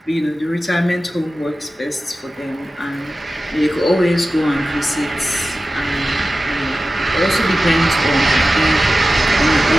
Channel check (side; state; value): both; normal; correlation 0.94